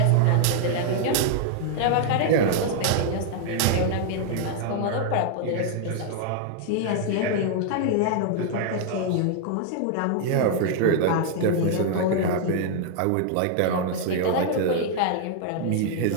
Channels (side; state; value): both; different; correlation 0.00